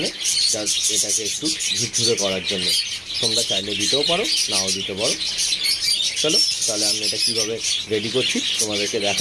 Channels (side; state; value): both; identical; correlation 1.00